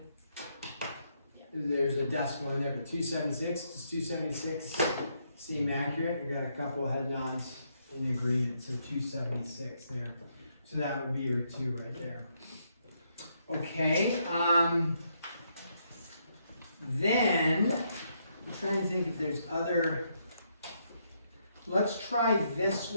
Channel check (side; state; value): both; inverted; correlation -0.76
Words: There's a decimal in there, but 276, does 276 seem accurate? You got a couple of head nods in agreement, so 276 there. So that would be your 2 right there. Okay, then I'm trying to think if there's other. Let's try this